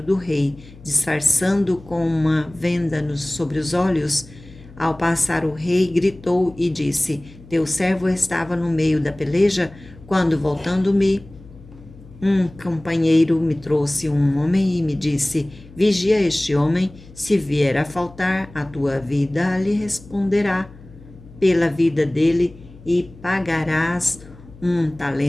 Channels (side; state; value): left; noise; hum, 21 dB below the sound